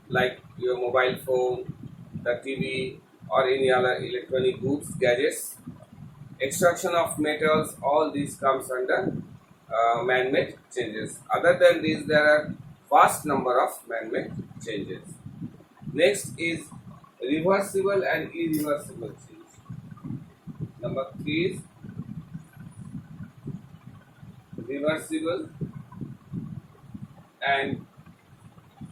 like your mobile phone, the TV, or any other electronic goods, gadgets. Extraction of metals, all these comes under man-made changes. Other than these, there are vast number of man-made changes. Next is reversible and irreversible change. Number 3 is reversible and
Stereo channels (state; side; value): identical; both; correlation 1.00